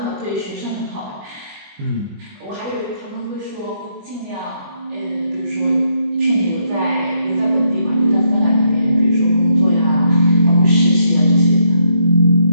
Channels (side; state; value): left; late; 20 ms